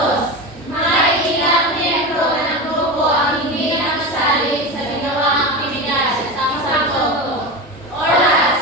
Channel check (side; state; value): both; normal; correlation 0.23